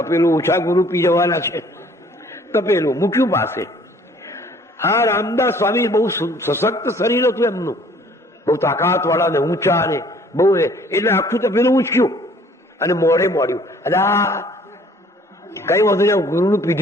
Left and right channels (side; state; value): both; normal; correlation 0.57